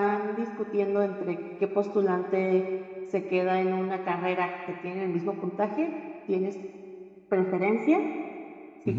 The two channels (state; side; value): identical; both; correlation 1.00